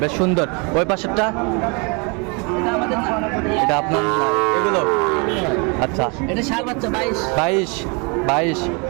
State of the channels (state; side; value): quieter; left; 32.3 dB